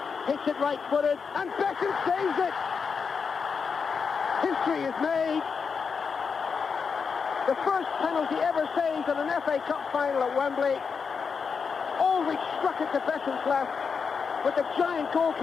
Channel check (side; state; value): right; quieter; 5.7 dB